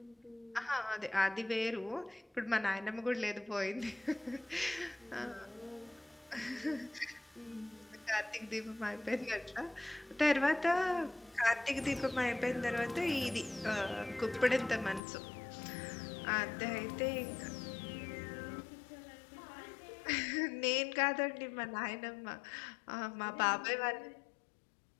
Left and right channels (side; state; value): right; drops out; at 15.0 s